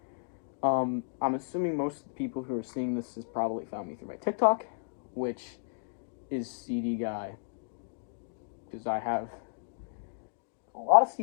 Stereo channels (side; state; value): right; silent; digital silence